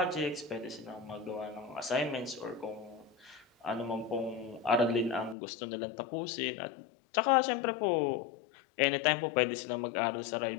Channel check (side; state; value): right; drops out; at 5.4 s